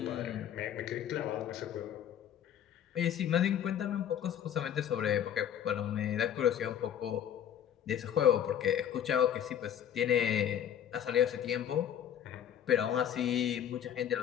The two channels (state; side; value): quieter; right; 9.8 dB